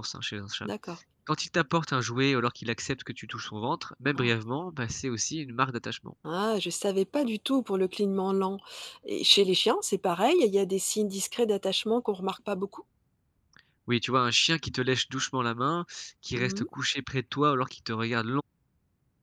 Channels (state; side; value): identical; both; correlation 1.00